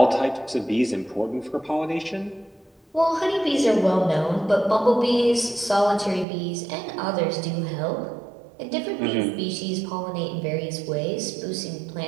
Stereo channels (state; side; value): drops out; left; at 6.2 s